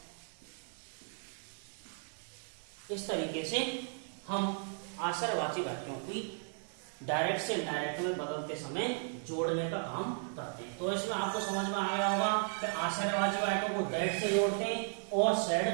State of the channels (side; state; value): left; silent; 54 dB below the other